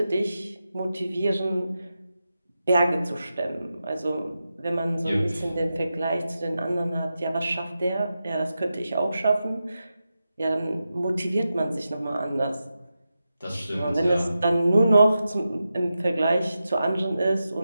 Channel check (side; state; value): both; inverted; correlation -0.90